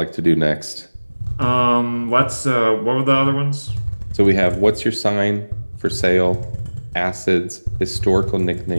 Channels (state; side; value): inverted; both; correlation -1.00